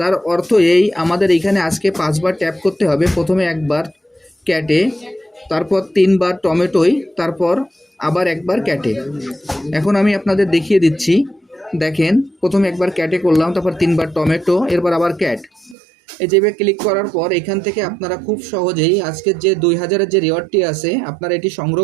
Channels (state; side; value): drops out; left; at 15.8 s